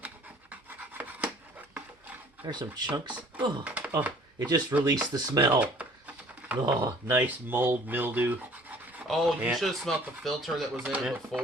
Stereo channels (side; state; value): both; normal; correlation 0.53